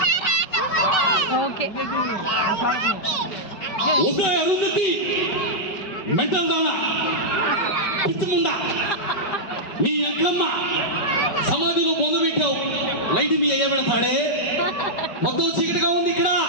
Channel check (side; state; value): right; late; 4.9 ms